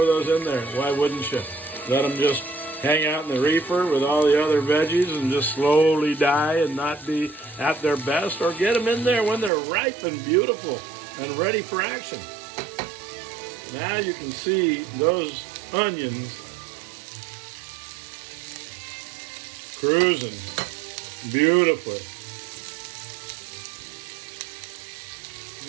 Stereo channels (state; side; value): drops out; left; at 9.5 s